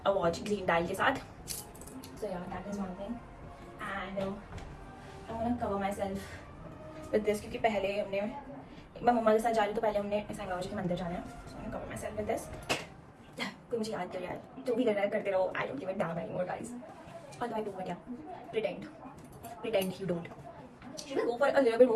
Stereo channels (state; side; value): identical; both; correlation 1.00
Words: a watch green dial के साथ. So yeah that is one thing and I want to cover my self with this क्योंकि पहले हमने मैं मम्मा के साथ जा रही तो पहले हमने सांई बाबा जी के मंदिर जाना है. So I cover my self with this. कोई मुझे याद कर यार जो भी कर रहा है करते रहो. I don't give it dam anymore guys. What do I do? But yeah, pretend you don't. Should I go for a little bit